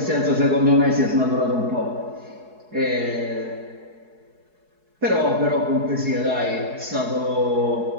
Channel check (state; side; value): late; left; 4.7 ms